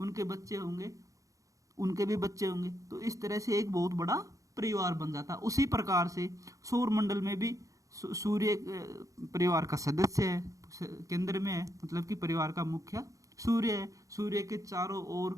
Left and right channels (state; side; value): late; left; 0.16 ms